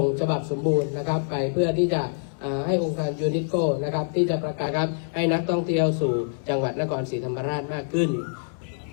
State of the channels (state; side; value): silent; right; 61 dB below the other